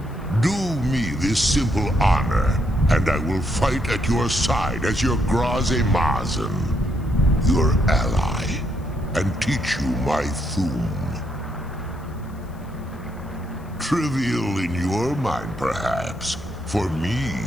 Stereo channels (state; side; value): noise; left; hiss, 29 dB below the sound